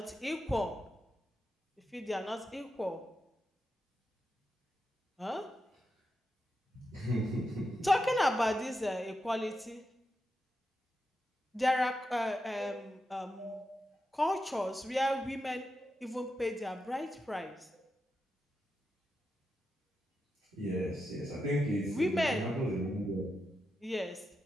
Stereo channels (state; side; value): normal; both; correlation 0.87